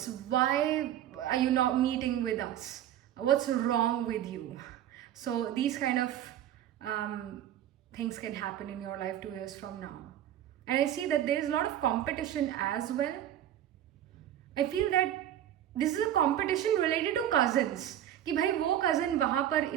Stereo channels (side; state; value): left; quieter; 11.5 dB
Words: Why are you not meeting with us? What's wrong with you? So these kind of things can happen in your life 2 years from now. And I see that there is a lot of competition as well. I feel that this is a competition related to cousins. कि भाई वो cousin वहाँ पर